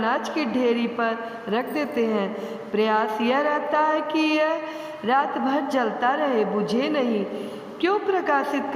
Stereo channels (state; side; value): identical; both; correlation 1.00